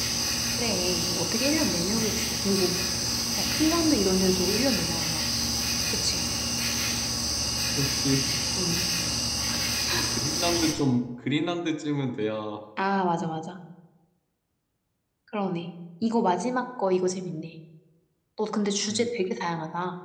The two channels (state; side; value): identical; both; correlation 1.00